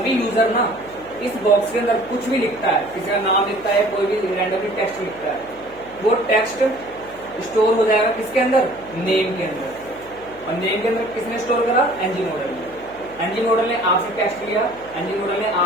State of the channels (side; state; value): left; noise; hum, 22 dB below the sound